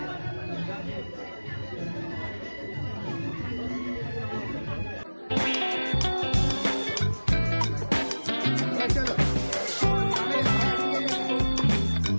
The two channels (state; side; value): inverted; both; correlation -1.00